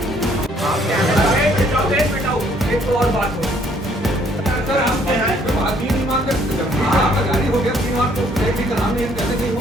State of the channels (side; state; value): both; normal; correlation 0.64